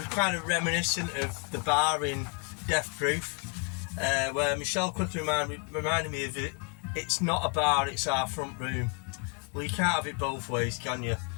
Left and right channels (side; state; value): right; quieter; 37.9 dB